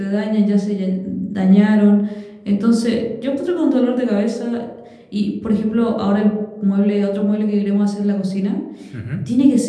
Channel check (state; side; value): identical; both; correlation 1.00